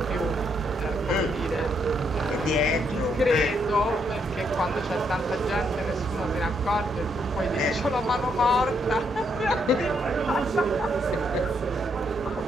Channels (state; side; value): normal; both; correlation 0.75